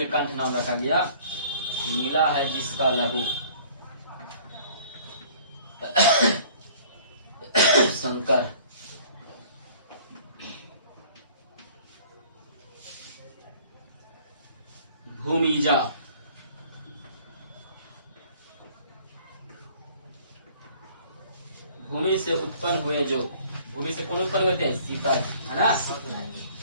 नाम रखा गया, नीला है जिसका लहू। शंकर, भूमिजा, भूमि से उत्पन्न हुए जो। भूमि से कौन उत्पन्न हुए थे? सीता जी, है ना।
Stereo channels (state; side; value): inverted; both; correlation -0.53